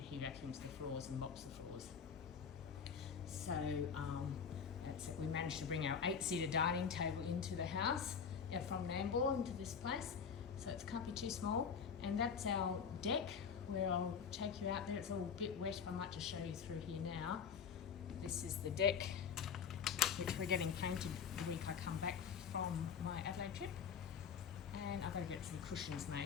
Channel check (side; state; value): right; quieter; 6.8 dB